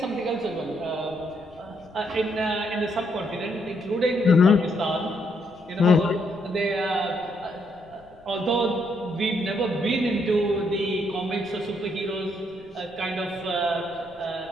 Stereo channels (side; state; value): left; noise; rumble, 26 dB below the sound